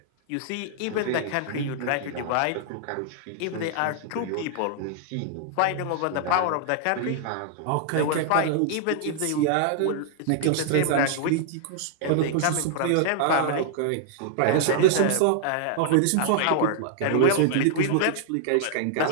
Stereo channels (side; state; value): both; different; correlation 0.00